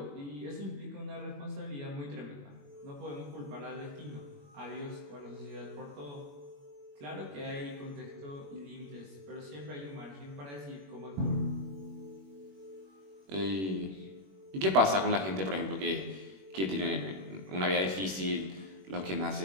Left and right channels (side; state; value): left; late; 21 ms